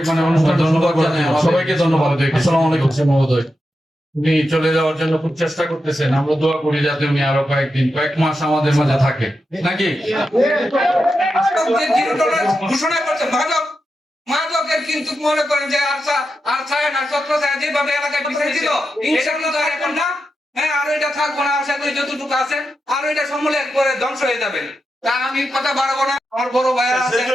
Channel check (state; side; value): normal; both; correlation 0.88